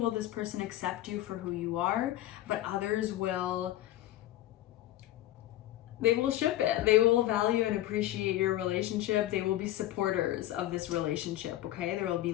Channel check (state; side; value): quieter; right; 14.4 dB